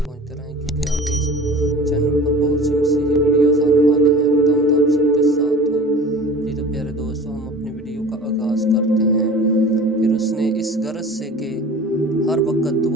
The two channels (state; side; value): normal; both; correlation 0.40